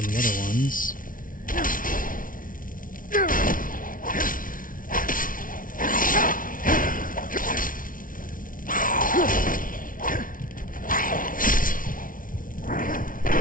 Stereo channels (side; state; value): right; late; 0.39 ms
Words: the other ones.